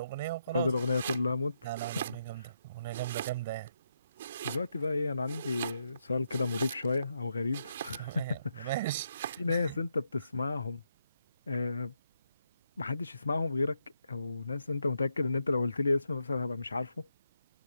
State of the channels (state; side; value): inverted; both; correlation -0.80